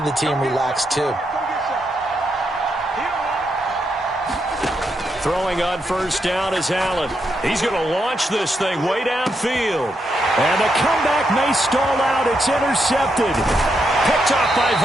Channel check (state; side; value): normal; both; correlation 0.81